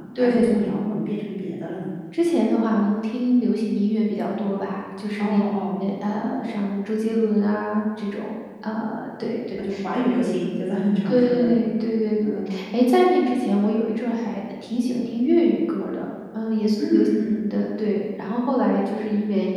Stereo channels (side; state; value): both; identical; correlation 1.00